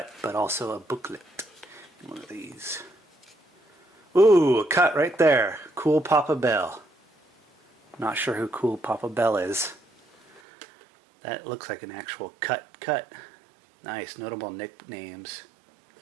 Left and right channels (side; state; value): left; drops out; at 10.4 s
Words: but also a booklet. One of these. Ooh, a cut right there. Cool Papa Bell. Not sure who Cool Papa Bell is. That looks like an actual cut. Nice, notable nicknames.